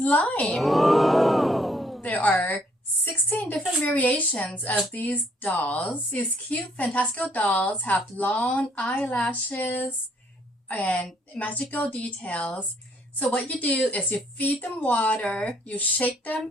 Oh. There are 16 different variations of these dolls. These cute fantastical dolls have long eyelashes and magical details. So what you do is you feed them water, you shake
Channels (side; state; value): both; normal; correlation 0.66